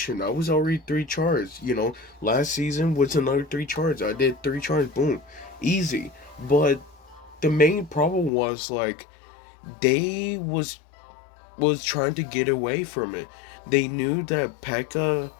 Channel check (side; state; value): right; drops out; at 8.3 s